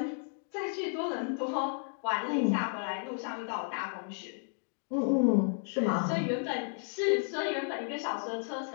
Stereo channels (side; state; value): right; silent; 56 dB below the other